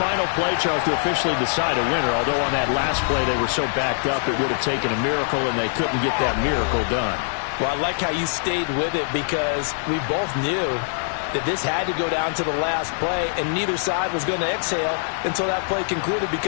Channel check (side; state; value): right; silent; 63 dB below the other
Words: play, Charles, to officially decide a winner. Although on that last play they were so backed up, it would have taken a miracle, and they couldn't get that miracle done. Well, I like how you stayed with it because we both knew that this had to go down to the last play, and neither side was going to exhale until that play concluded